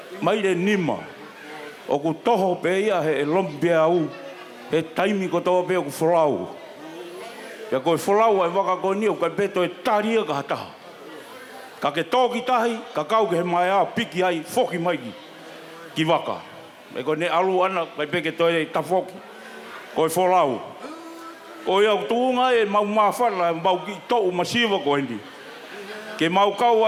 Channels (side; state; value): both; identical; correlation 1.00